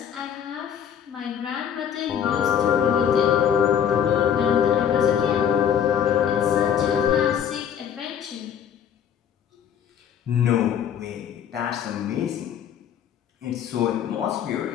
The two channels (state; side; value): quieter; right; 8.7 dB